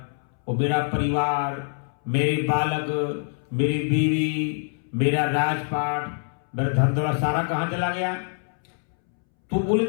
वो मेरा परिवार, मेरे बालक, मेरी बीवी, मेरा राजपाट, मेरा धन दौलत सारा कहां चला गया? तो बोले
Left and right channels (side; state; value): right; silent; 62 dB below the other